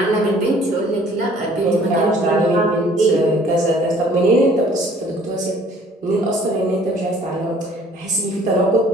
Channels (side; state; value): both; normal; correlation 0.56